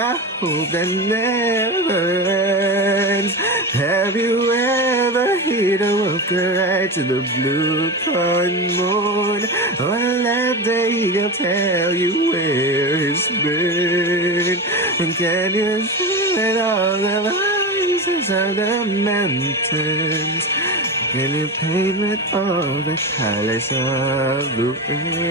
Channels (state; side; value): normal; both; correlation 0.22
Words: hope that never ends. Have you ever heard a wolf cry to the blue corn moon, or let the eagle tell you where he's been? And can you feel all the voices of the mountains? Can you paint with all the colors of the